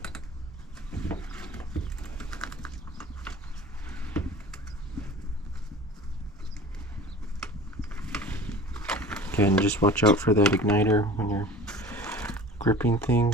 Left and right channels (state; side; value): normal; both; correlation 0.41